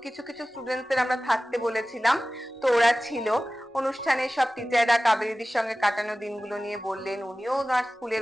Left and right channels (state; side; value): normal; both; correlation 0.96